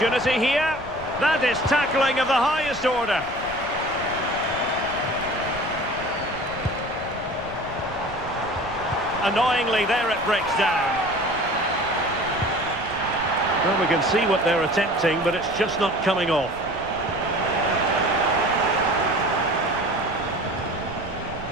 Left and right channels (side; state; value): right; noise; rumble, 18 dB below the sound